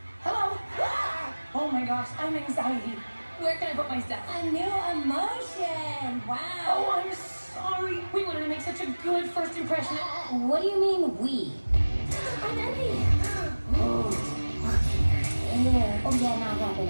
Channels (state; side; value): inverted; both; correlation -1.00